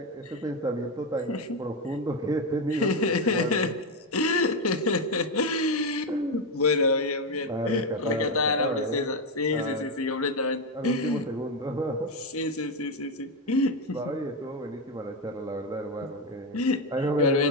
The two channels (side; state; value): both; normal; correlation 0.09